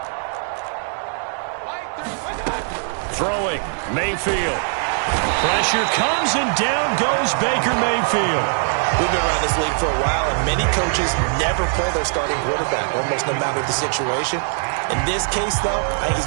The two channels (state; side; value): silent; left; 56 dB below the other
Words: Throwing, Mayfield. Pressure comes and down goes Baker Mayfield. We've been around this league for a while, and many coaches never play their starting quarterback, almost no matter the situation. In this case, though, I think he's